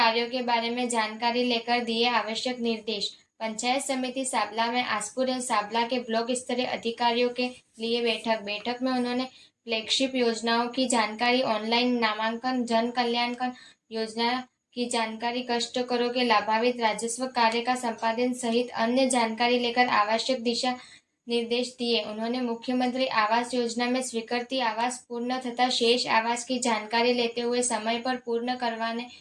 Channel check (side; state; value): both; identical; correlation 1.00